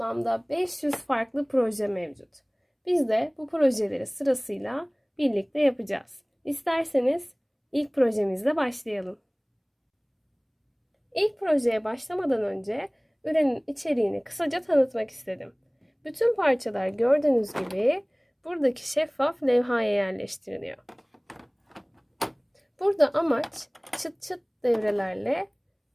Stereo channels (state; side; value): identical; both; correlation 1.00